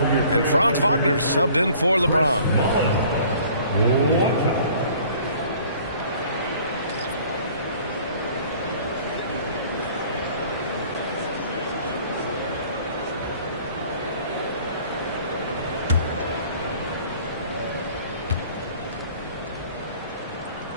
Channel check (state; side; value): inverted; both; correlation -0.53